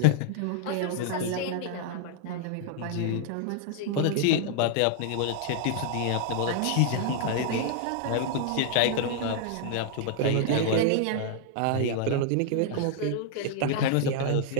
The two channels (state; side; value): different; both; correlation 0.00